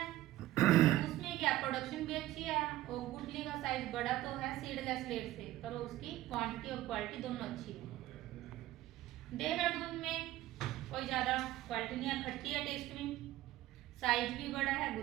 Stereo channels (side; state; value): left; quieter; 15.5 dB